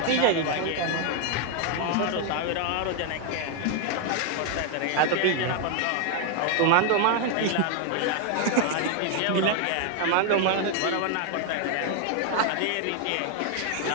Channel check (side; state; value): both; different; correlation 0.01